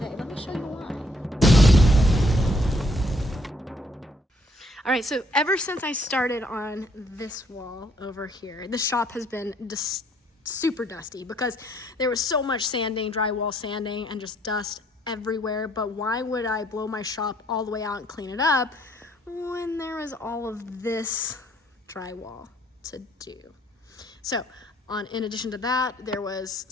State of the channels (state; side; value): normal; both; correlation 0.67